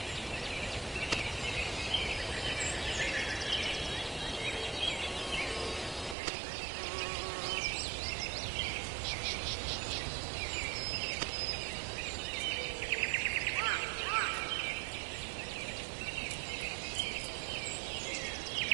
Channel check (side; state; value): left; drops out; at 6.2 s